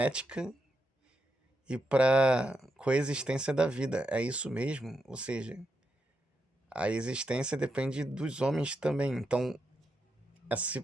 e para coexistência da vida. É isso mesmo? Ou seja, a existência depende dos homens também. Então, esse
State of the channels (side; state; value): both; normal; correlation 0.84